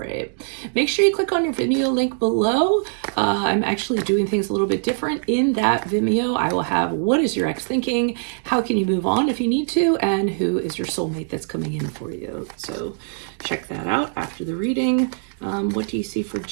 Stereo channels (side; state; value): left; silent; digital silence